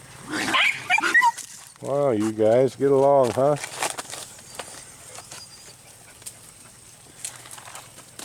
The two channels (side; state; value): both; identical; correlation 1.00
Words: Wow, you guys get along, huh?